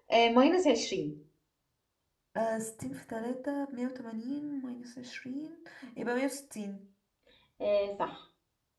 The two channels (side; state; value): both; identical; correlation 1.00